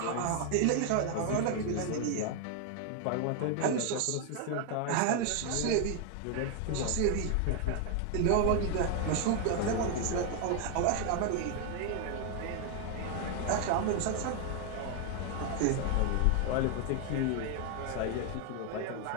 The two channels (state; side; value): different; both; correlation 0.00